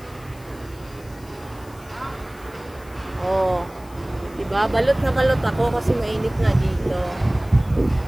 Oh. Diba? Balot na balot ako kasi mainit na dito.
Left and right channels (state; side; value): noise; left; hiss, 25 dB below the sound